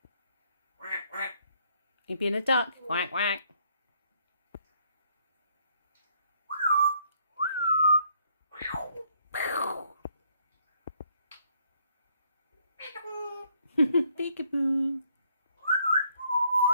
You being a duck? Quack, quack. Peekaboo.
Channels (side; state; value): both; inverted; correlation -0.68